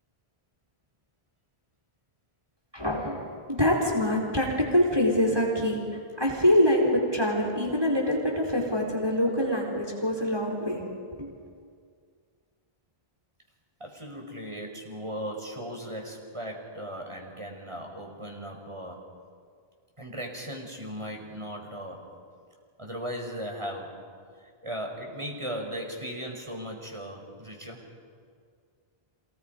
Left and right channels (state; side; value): late; left; 1.2 ms